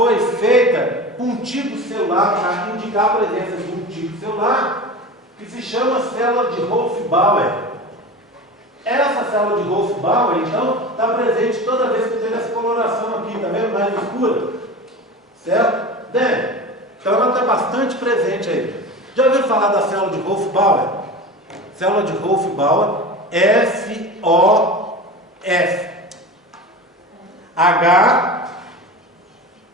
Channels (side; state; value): both; normal; correlation 0.31